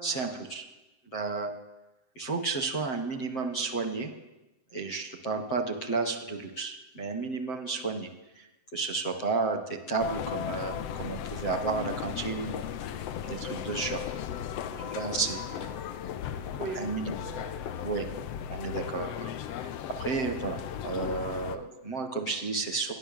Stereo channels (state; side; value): late; right; 7.7 ms